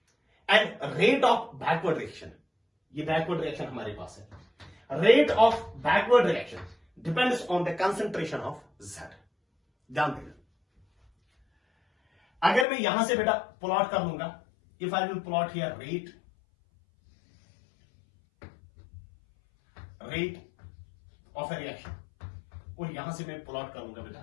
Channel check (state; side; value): drops out; right; at 12.7 s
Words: And rate of backward reaction, ये backward reaction हमारे पास है। Rate of backward reaction depends on the concentration of Z। ध्यान देना, अगर मैं यहां से बेटा प्लॉट कर लूंगा, if I will plot here rate of a reaction, और यहां से मैं प्लॉट करूंगा बेटा